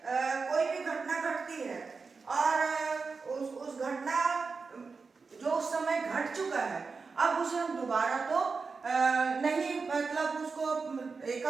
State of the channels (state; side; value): quieter; left; 4.6 dB